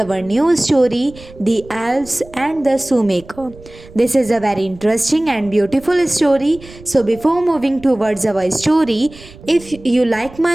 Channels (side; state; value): right; noise; rumble, 20 dB below the sound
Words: new story, The Elves and the Shoemaker. This is a very interesting and beautiful story. So, before moving towards our story, if you like